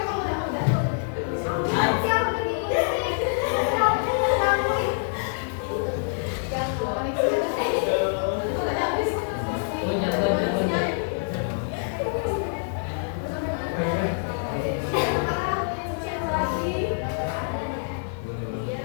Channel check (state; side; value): silent; right; digital silence